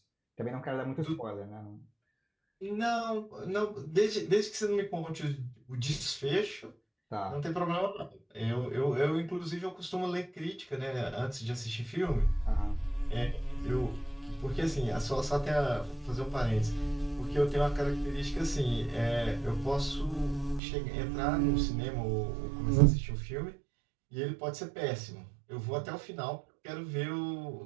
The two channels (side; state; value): left; drops out; at 20.6 s